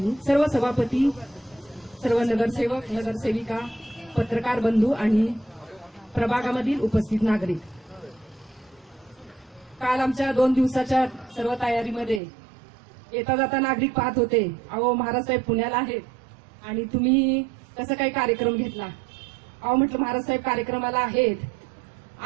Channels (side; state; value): left; drops out; at 12.2 s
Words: सर्व सभापती, सर्व नगरसेवक, नगरसेविका, पत्रकार बंधू आणि प्रभागामधील उपस्थित नागरिक. काल आमच्या 2 दिवसाच्या सर्व तयारीमध्ये येता जाता नागरिक पाहत होते, अहो महाराज साहेब पुण्याला आहेत आणि तुम्ही कसं काही कार्यक्रम घेतला. अहो म्हटलं महाराज साहेब कार्यक्रमाला आहेत